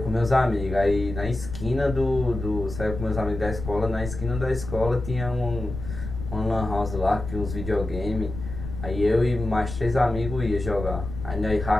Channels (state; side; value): noise; left; rumble, 8 dB below the sound